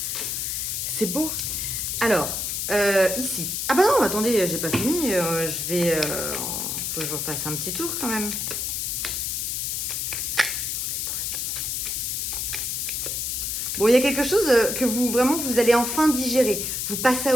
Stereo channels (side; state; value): left; noise; hiss, 1 dB below the sound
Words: C'est beau. Alors, ici. Ah bah non, attendez, j'ai pas fini. Je vais... faut que je refasse un petit tour quand même. Bon, il y a quelque chose que vous, vraiment, vous allez enfin digérer. Vous passez à